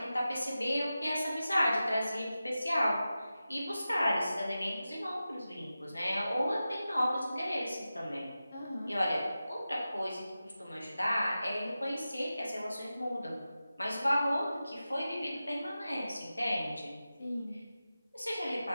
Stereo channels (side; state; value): both; inverted; correlation -0.93